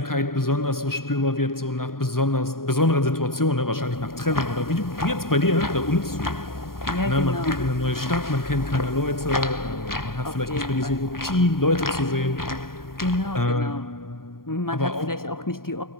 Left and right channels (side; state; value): right; late; 0.92 ms